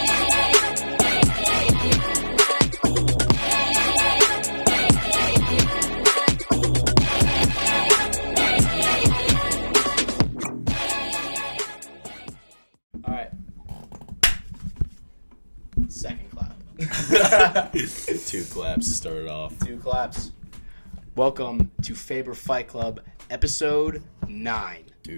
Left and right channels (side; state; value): both; inverted; correlation -1.00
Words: All right. Second clap. 2 claps started off. 2 claps. Welcome to Faber Fight Club, episode 9.